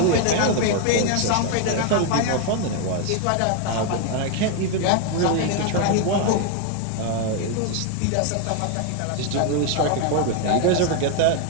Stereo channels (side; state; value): both; different; correlation 0.01